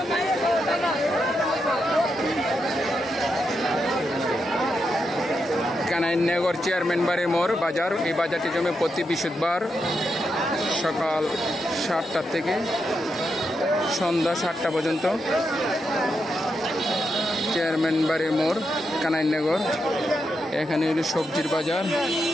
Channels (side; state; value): both; normal; correlation 0.84